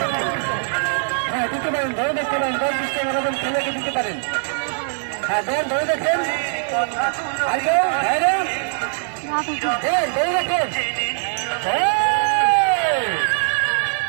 হ্যাঁ দিতে পারেন, ধরে দেখতে পারেন, 10-20 টাকা মতন খেলেকে দিতে পারেন। হ্যাঁ দেন ধরে দেখেন, ধরে দেখেন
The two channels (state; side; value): silent; left; digital silence